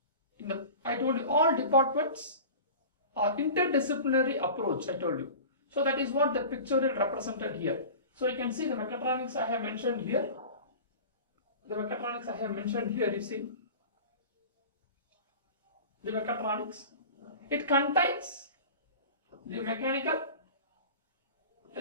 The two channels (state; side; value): inverted; both; correlation -0.37